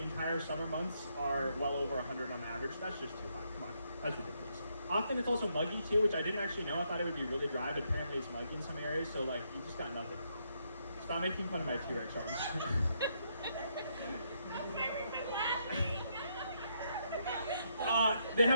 entire summer months are well over 100 on average. That's just too high. Come on, that's ridiculous. Often it's also muggy too, which I didn't actually know. I thought it would be really dry, but apparently it's muggy in some areas. So like, you just got nothing. Stop making fun of my T-Rex arms. They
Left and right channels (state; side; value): inverted; both; correlation -0.76